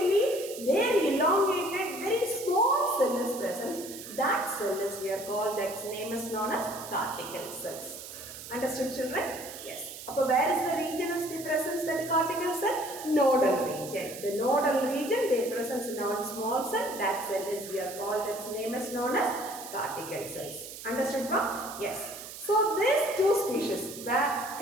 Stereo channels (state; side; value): noise; right; hiss, 12 dB below the sound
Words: there elongated, very small cell is present. That cell is we are called, that name is known as cortical cells. Understood, children? Yes. Upper where is the region is the presence that cortical cell? Nodal region. The nodal region, they presence in our small cell. That cell is we are called, its name is known as cortical cells. Understood, ma'am? Yes. So these two species,